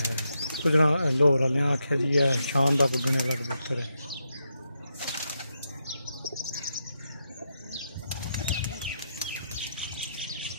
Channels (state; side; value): inverted; both; correlation -0.83